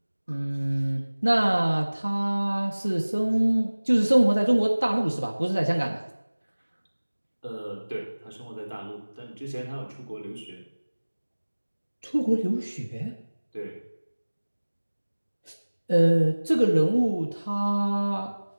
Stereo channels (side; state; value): both; inverted; correlation -1.00